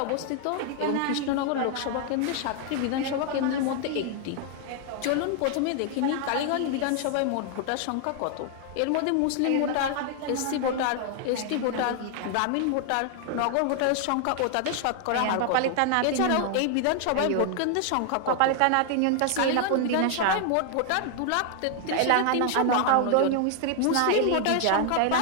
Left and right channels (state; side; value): different; both; correlation 0.00